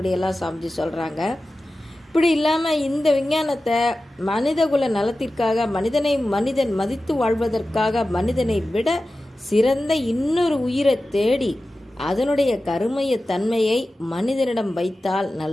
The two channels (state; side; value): normal; both; correlation 0.94